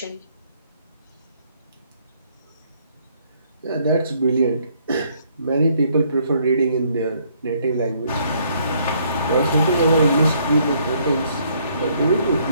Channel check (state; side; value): inverted; both; correlation -0.67